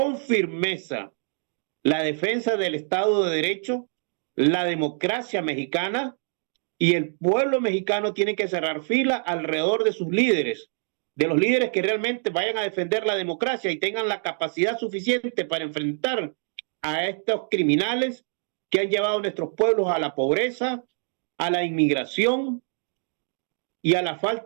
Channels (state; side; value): silent; left; 62 dB below the other